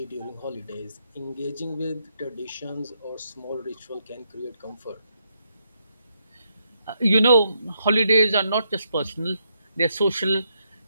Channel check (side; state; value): both; inverted; correlation -0.78